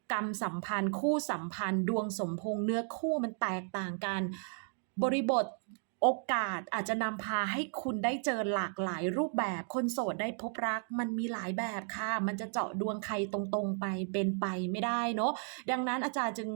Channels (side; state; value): left; silent; 55 dB below the other